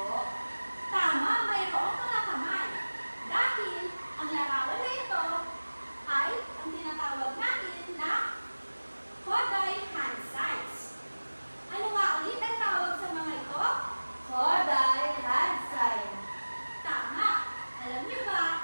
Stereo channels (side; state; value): both; inverted; correlation -1.00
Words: Tama, mayroong mga kamay. Dahil ang larawan na ito ay ang tinatawag natin na Koday hand signs. Ano nga ulit ang tawag sa mga ito? Koday hand sign. Tama. Alam niyo